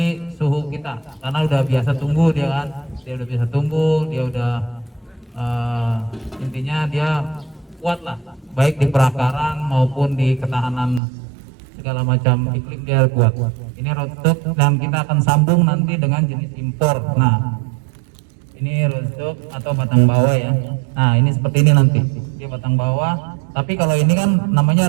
suhu kita karena udah biasa tumbuh dia kan. Dia udah biasa tumbuh, dia udah intinya dia kuat lah, baik di perakaran maupun di ketahanan segala macam iklim dia kuat. Ini rootstock dan kita akan sambung nanti dengan jenis impor. Nah ini rootstock atau batang bawah ya. Nah ini seperti ini nanti dia batang bawah, tapi kalau ini kan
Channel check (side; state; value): left; drops out; at 11.0 s